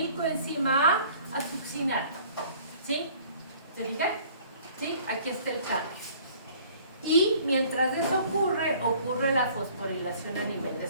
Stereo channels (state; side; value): inverted; both; correlation -0.54